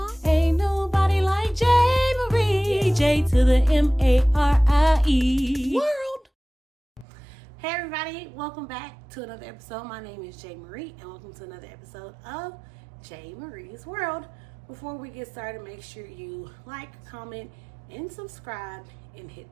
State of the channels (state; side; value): drops out; left; at 7.1 s